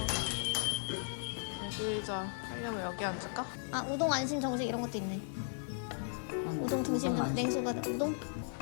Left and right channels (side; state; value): right; silent; digital silence